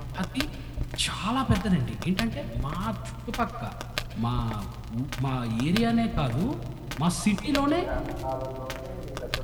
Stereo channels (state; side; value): identical; both; correlation 1.00